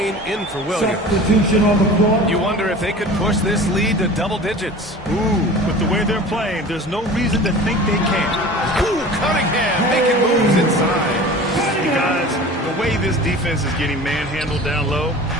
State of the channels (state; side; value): normal; both; correlation 0.39